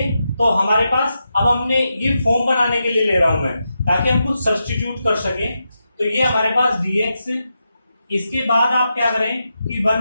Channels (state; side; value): inverted; both; correlation -0.87